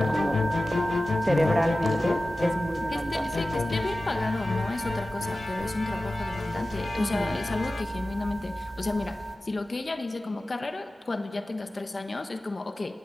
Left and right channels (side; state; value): both; normal; correlation 0.95